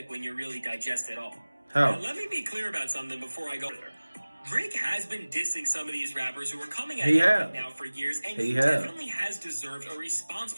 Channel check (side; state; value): both; inverted; correlation -1.00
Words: when you really digest it all. How? Now, let me be clear about something before I go there. Drake has been dissing some of these rappers who are coming at him right now for years, and he definitely has deserved a response